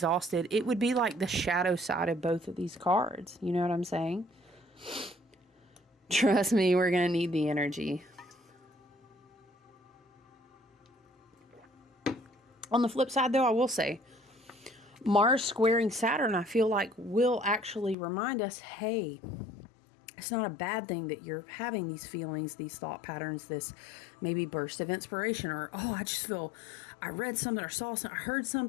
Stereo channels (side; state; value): right; drops out; at 17.9 s